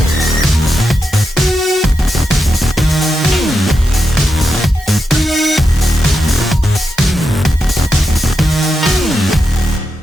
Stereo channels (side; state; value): both; normal; correlation 0.87